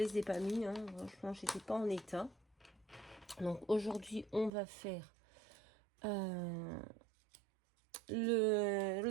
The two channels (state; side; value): drops out; left; at 4.5 s